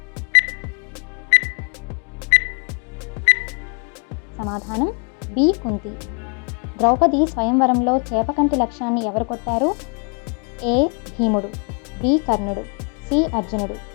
సమాధానం బి కుంతి. ద్రౌపది స్వయంవరంలో చేపకంటి లక్ష్యాన్ని ఎవరు కొట్టారు? ఏ భీముడు, బి కర్ణుడు, సి అర్జునుడు,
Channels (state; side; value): quieter; right; 38.0 dB